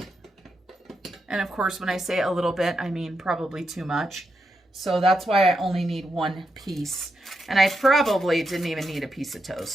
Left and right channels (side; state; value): both; normal; correlation 0.84